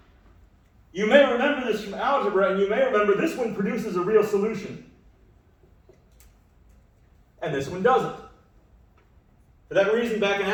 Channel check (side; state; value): both; identical; correlation 1.00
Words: You may remember this from algebra, and you may remember this one produces a real solution. And this one doesn't. For that reason, back in